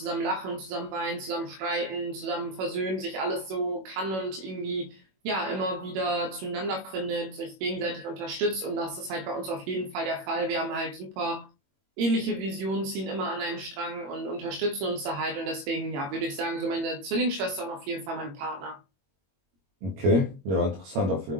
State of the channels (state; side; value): late; left; 21 ms